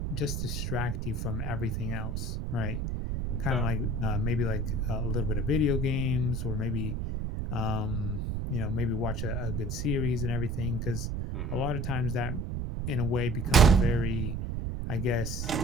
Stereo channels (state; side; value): noise; right; rumble, 2 dB below the sound